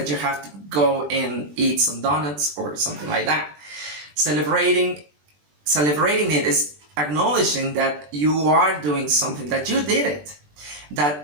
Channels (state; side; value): late; left; 20 ms